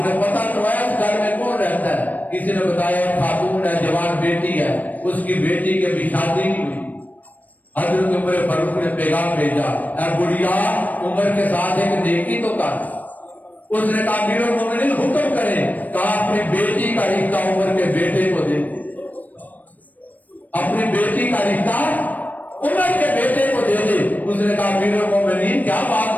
نے پتہ کروایا اس گھر میں کون رہتا ہے؟ کسی نے بتایا خاتون ہے، جوان بیٹی ہے، اس کی بیٹی کے بھی شادی نہیں ہوئی۔ حضرت عمر فاروق نے پیغام بھیجا، اے بڑھیا عمر کے ساتھ ایک نیکی تو کر۔ اس نے کہا امیر المومنین حکم کریں، کہا اپنی بیٹی کا رشتہ عمر کے بیٹے کو دے دے، اپنی بیٹی کا رشتہ عمر کے بیٹے کو دے دے۔ اس نے کہا امیر المومنین کیا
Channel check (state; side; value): late; right; 0.080 ms